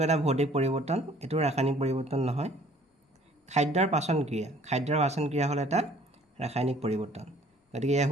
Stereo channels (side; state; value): both; normal; correlation 0.55